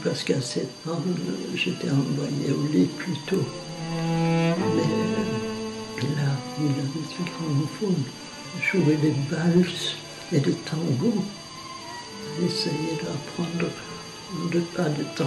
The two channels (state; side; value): identical; both; correlation 1.00